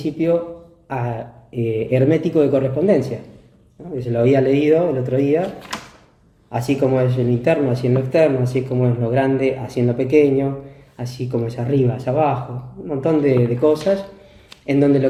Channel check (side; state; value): both; identical; correlation 1.00